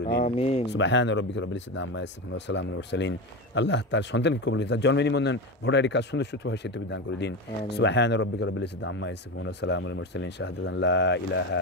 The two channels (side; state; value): both; normal; correlation 0.21